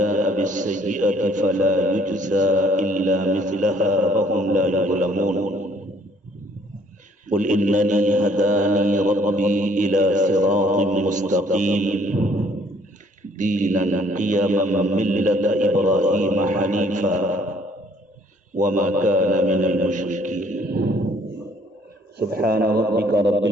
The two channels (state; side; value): normal; both; correlation 0.62